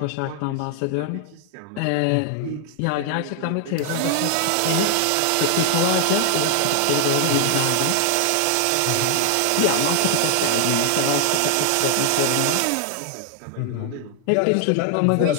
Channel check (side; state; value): both; different; correlation 0.00